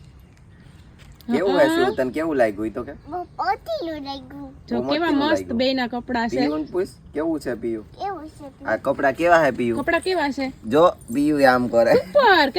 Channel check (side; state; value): both; identical; correlation 1.00